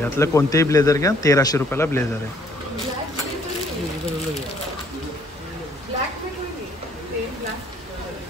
यातलं कोणतेही ब्लेझर घ्या, 1300 रुपयाला ब्लेझर आहे.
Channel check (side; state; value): both; normal; correlation 0.63